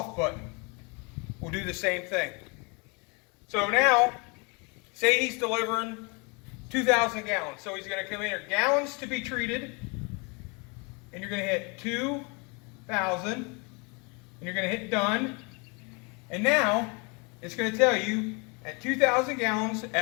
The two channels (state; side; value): quieter; right; 31.2 dB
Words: button. We'll do the same thing. So now, say he's delivering 2,000 gallons. So he's going to come in here, gallons to be treated, and you're going to hit 2,000, and you're going to hit done. And now, it's going to tell you, at 2,000 gallons,